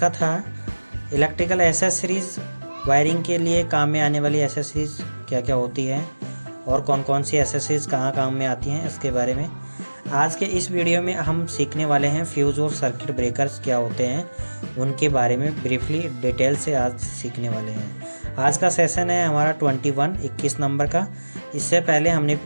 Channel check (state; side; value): inverted; both; correlation -1.00